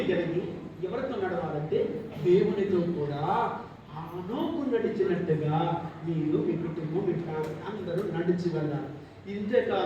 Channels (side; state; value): both; identical; correlation 1.00